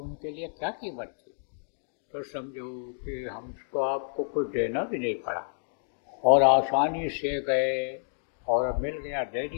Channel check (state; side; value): silent; right; digital silence